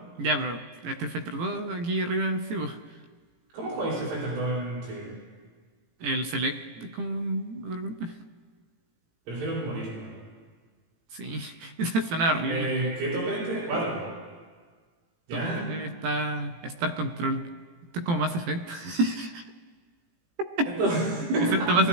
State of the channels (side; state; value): left; late; 18 ms